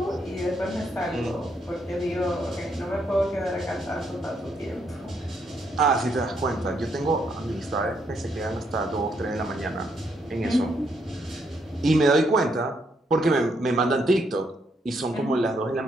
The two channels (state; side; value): normal; both; correlation 0.75